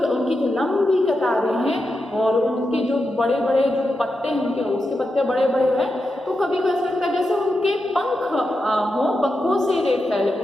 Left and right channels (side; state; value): both; normal; correlation 0.88